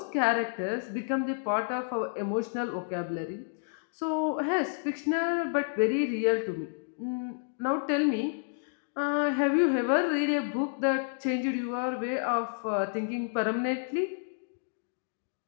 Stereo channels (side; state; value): right; silent; digital silence